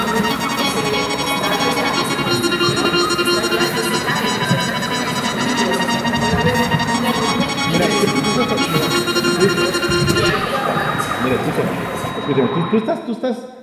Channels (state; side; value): identical; both; correlation 1.00